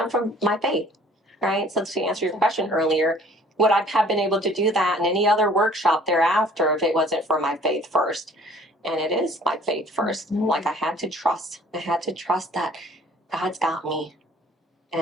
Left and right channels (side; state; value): both; normal; correlation 0.54